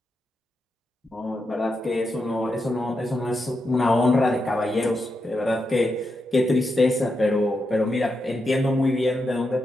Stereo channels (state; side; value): normal; both; correlation 0.85